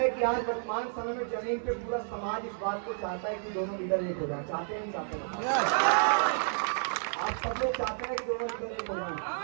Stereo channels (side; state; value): left; silent; 57 dB below the other